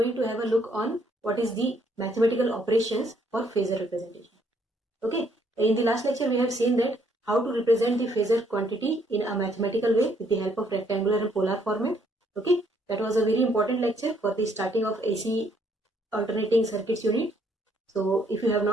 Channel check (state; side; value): normal; both; correlation 0.68